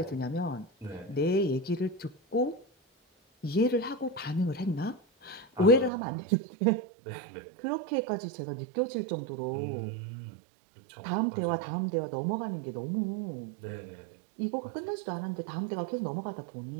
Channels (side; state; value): left; drops out; at 5.9 s